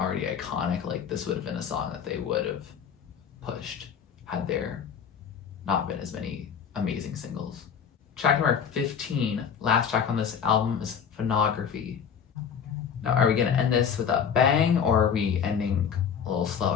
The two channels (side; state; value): right; quieter; 7.5 dB